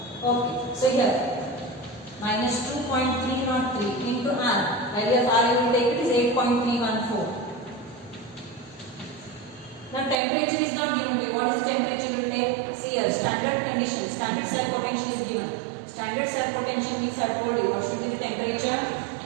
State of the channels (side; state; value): left; drops out; at 10.2 s